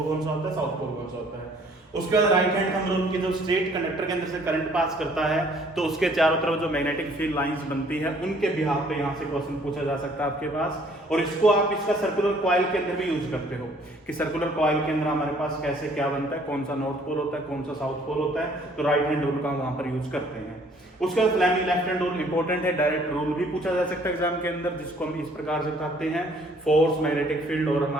कौन सा होता है, साउथ पोल कौन सा होता है। उसके बाद राइट हैंड थंब रूल की जो स्ट्रेट कंडक्टर के अंदर से करंट पास करता है तो उसके चारों तरफ जो मैग्नेटिक फील्ड लाइंस बनती है उनके बिहाफ पे यहाँ से क्वेश्चन पूछा जा सकता है आपके पास। और इसको आप इसका सर्कुलर कॉइल के अंदर भी यूज करते हो कि सर्कुलर कॉइल के अंदर हमारे पास कैसे क्या बनता है, कौन सा नॉर्थ पोल होता है, कौन सा साउथ पोल होता है, तो राइट हैंड रूल का वहां पर यूज करते हैं। उसके बाद Fleming left hand rule important है, डायरेक्ट रूल भी पूछा जा सकता है एग्जाम के अंदर, जिसको हम इस प्रकार से बताते हैं फोर्स, मैग्नेटिक फील्ड और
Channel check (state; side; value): normal; both; correlation 0.59